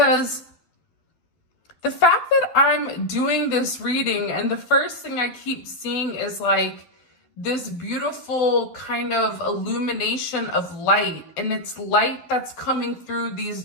the fact that I'm doing this reading and the first thing I keep seeing is like this beautiful kind of illumination of light, and it's light that's coming through these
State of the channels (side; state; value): right; late; 12 ms